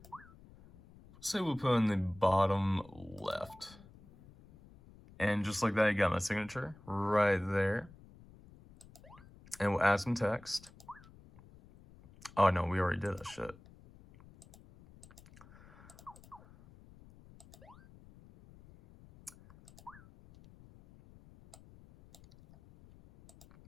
Say we'll put in the bottom left. And just like that, you got my signature right there. And we'll add some text. Oh no, we already did that shit.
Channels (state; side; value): noise; left; rumble, 22 dB below the sound